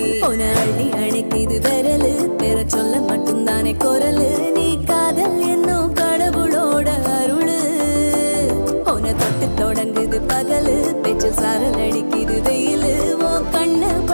உன அள்ளி அணைக்குது விரலு பெற சொல்ல மட்டும்தானே குரலு நீ காதல் என்னும் கடவுளோட அருளு உன தொட்டு தொடங்குது பகலு பேச்சில் சாரல் அடிக்குது வெயிலு ஓ கண்ணு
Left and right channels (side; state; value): both; inverted; correlation -1.00